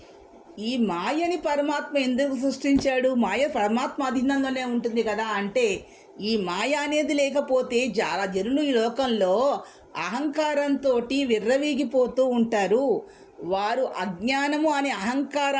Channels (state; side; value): identical; both; correlation 1.00